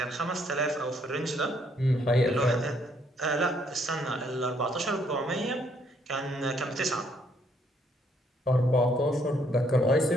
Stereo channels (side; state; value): both; normal; correlation 0.69